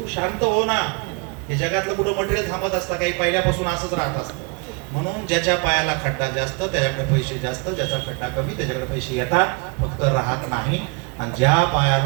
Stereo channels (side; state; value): left; quieter; 30.7 dB